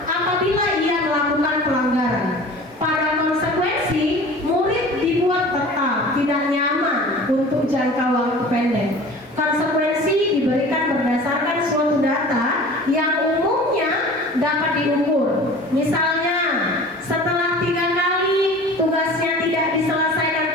apabila ia melakukan pelanggaran. Pada konsekuensi, murid dibuat tetap tidak nyaman untuk jangka waktu pendek. Konsekuensi diberikan berdasarkan suatu data yang umumnya dapat diukur. Misalnya, setelah 3 kali tugasnya tidak diselesaikan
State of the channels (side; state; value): both; normal; correlation 0.42